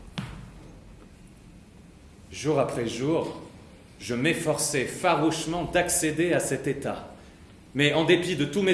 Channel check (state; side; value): identical; both; correlation 1.00